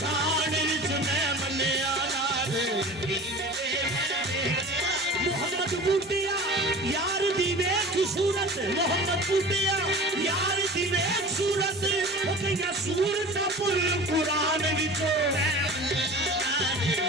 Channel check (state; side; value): normal; both; correlation 0.38